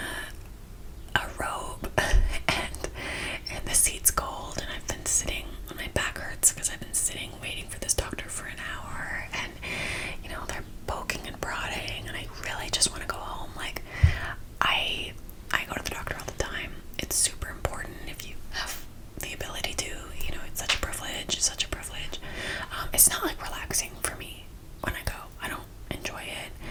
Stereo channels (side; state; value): both; identical; correlation 1.00